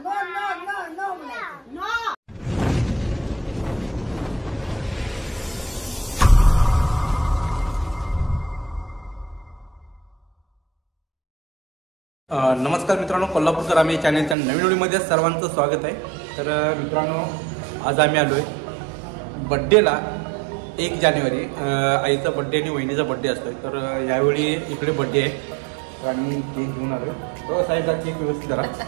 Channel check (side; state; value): left; drops out; at 14.4 s